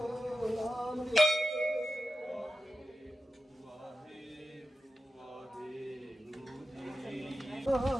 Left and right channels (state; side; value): normal; both; correlation 0.92